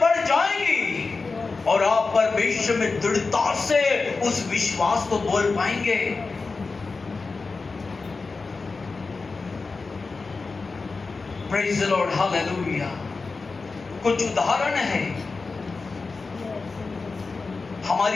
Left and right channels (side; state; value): right; quieter; 4.1 dB